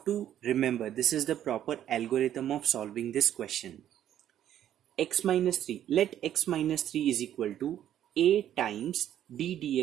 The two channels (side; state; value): left; quieter; 11.0 dB